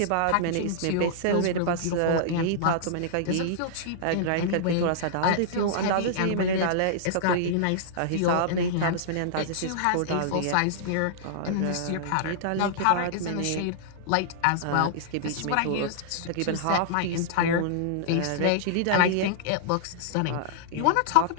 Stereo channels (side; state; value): both; different; correlation -0.02